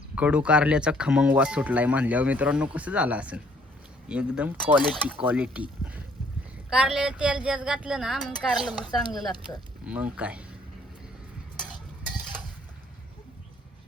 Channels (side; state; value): both; normal; correlation 0.62